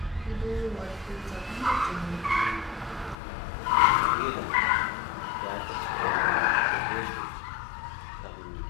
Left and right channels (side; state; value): right; drops out; at 3.2 s